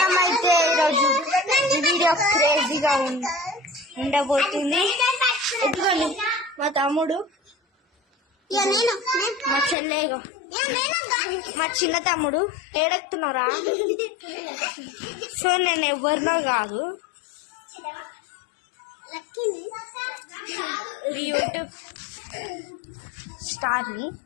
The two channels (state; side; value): drops out; right; at 9.8 s